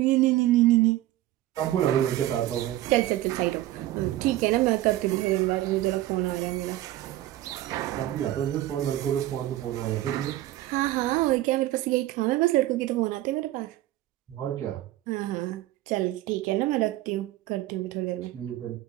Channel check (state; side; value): quieter; left; 15.1 dB